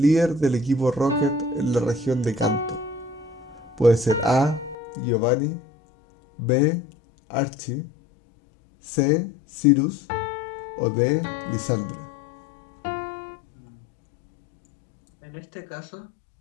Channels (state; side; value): drops out; right; at 4.8 s